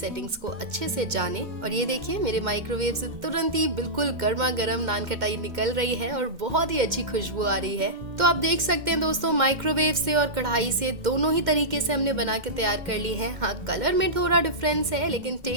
को अच्छे से जाने। और ये देखिए, मेरे माइक्रोवेव से तुरंत ही बिल्कुल गर्मा गर्म नान खटाई निकल रही है और बहुत ही अच्छी खुशबू आ रही है। तो आप देख सकते हैं दोस्तों, माइक्रोवेव से और कढ़ाई से दोनों ही तरीके से हमने बना के तैयार कर ली है। हाँ, कलर में थोड़ा डिफरेंस है, लेकिन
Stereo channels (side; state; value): left; late; 2.1 ms